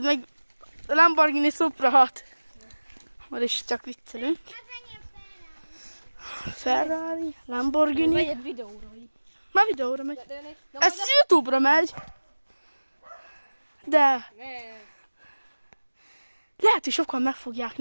meg a Lamborghini Supra 6. Már is csak viccelünk. Ferrari, Lamborghini. Megy egy videóra. Már videóra megy. Ez YouTube-ra megy. De lehet, hogy sokan meg fogják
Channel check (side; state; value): both; inverted; correlation -1.00